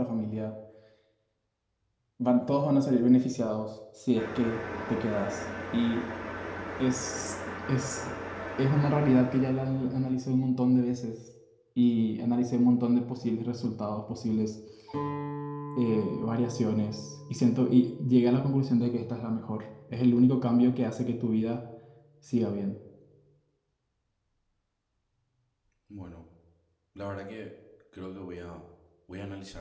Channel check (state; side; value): identical; both; correlation 1.00